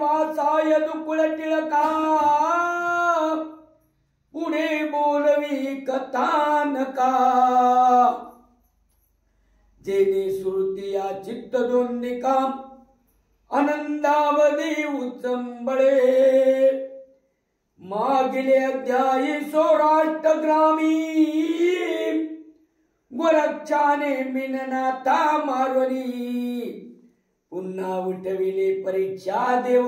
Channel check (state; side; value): identical; both; correlation 1.00